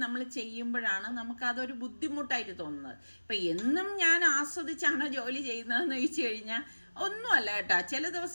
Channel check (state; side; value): inverted; both; correlation -1.00